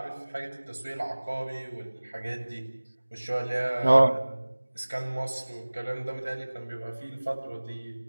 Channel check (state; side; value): inverted; both; correlation -1.00